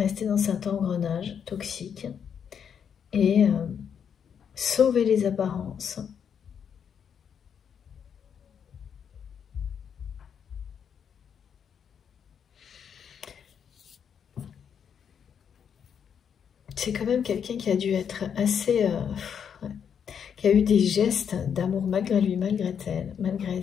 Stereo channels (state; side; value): quieter; right; 7.7 dB